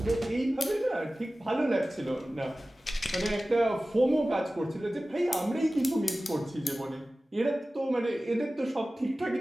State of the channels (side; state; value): both; normal; correlation 0.96